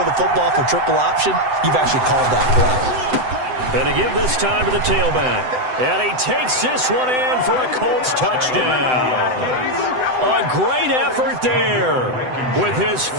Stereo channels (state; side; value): late; left; 7.9 ms